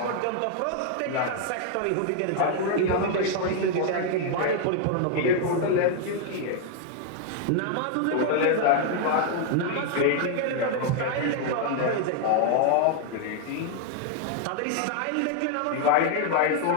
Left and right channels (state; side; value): different; both; correlation 0.00